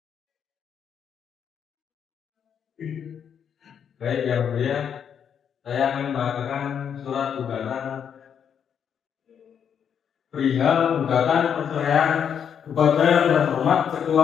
Baik yang mulia, saya akan membacakan surat gugatan perihal gugatan perceraian kepada yang terhormat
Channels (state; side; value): quieter; right; 8.0 dB